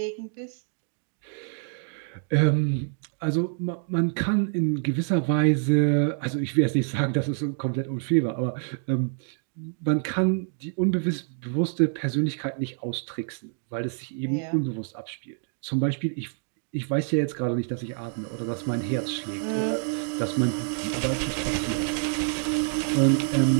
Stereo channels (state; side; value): silent; left; 60 dB below the other